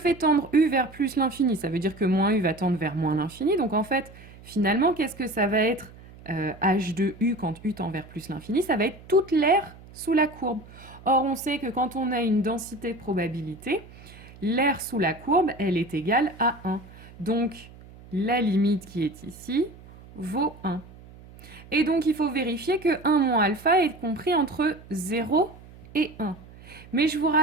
tendre u vers plus l'infini, ça veut dire que moins u va tendre vers moins l'infini. Donc en fait, finalement, qu'est-ce que ça va être h de u quand u tend vers plus l'infini? Ça va être toute l'aire sous la courbe. Or, on sait que quand on a une densité de probabilité, l'aire sous la courbe, elle est égale à 1. Donc, la limite qui est ici vaut 1. Et donc, il faut vérifier que 1 moins alpha est compris entre 0 et 1. Mais je vous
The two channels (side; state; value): right; noise; hum, 20 dB below the sound